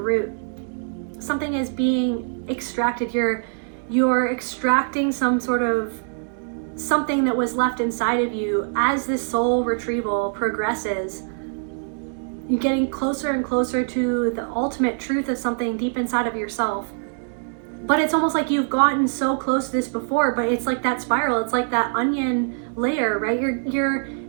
Something is being extracted. You're extracting some sort of something that was left inside of you as this soul retrieval progresses. You're getting closer and closer to the ultimate truth of something deep inside of yourself. But it's almost like you've gotten so close to this before, but it's like that spiral, it's like that onion layer, right?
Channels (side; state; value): left; silent; digital silence